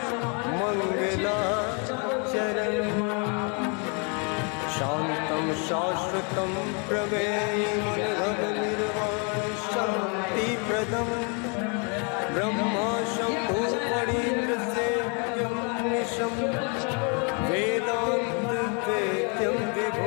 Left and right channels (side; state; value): right; quieter; 36.0 dB